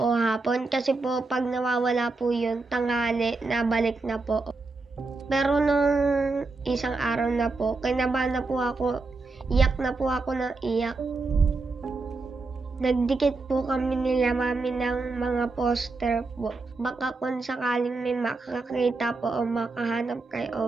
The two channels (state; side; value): quieter; left; 3.7 dB